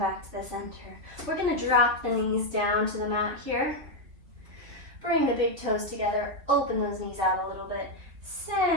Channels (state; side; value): late; left; 3.4 ms